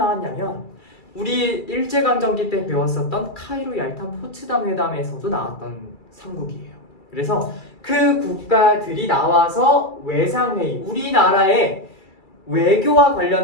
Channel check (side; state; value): right; late; 2.3 ms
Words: 우리 일제강점기 때 배웠었던 카이로 얄탄 포츠담 회담에서도 나왔던 삼국이에요. 그래서 그 국가들이 나와서 외상회의, 우리나라의 외교와